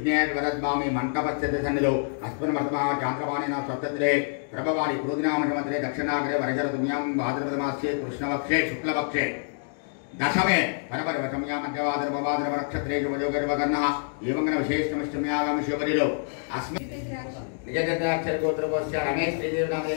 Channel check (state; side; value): silent; right; digital silence